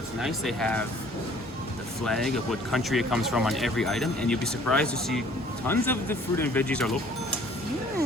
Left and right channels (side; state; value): both; normal; correlation 0.55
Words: nice they have the flag of what country it comes from on every item, and you'll be surprised to see tons of the fruit and veggies are local.